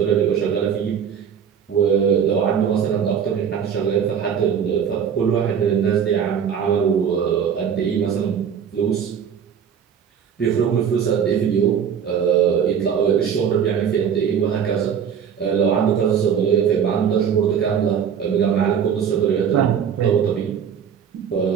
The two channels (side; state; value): left; quieter; 7.8 dB